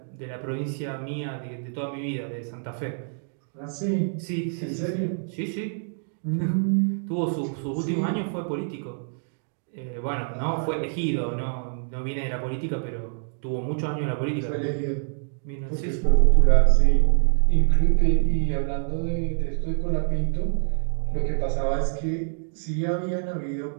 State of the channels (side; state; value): left; silent; digital silence